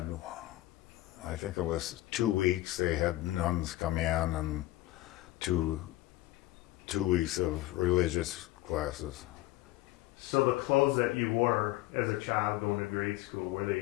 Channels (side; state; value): right; quieter; 17.1 dB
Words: I think it was 2 weeks, they had nuns come in and two weeks of religious classes. So the clothes that you wore as a child going to grade school, were